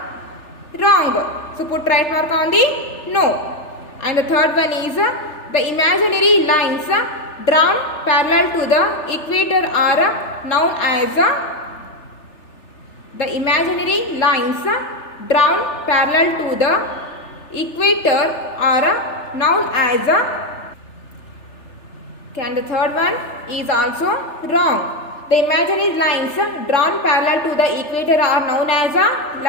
wrong. So put right mark on the no. And the third one is the imaginary lines drawn parallel to the equator are known as the imaginary lines drawn parallel to the equator are known as a. Okay, and the third one is also wrong. The imaginary lines drawn parallel to the equator are known as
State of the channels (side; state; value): right; late; 3.4 ms